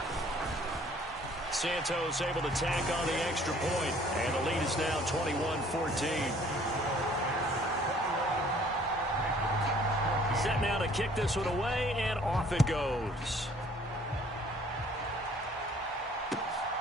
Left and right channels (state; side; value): normal; both; correlation 0.57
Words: Santos able to tack on the extra point, and the lead is now 21-14. Set now to kick this one away, and off it goes.